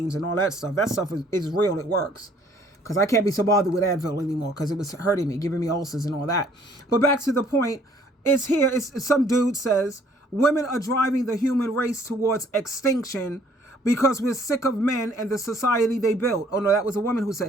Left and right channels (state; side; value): normal; both; correlation 0.61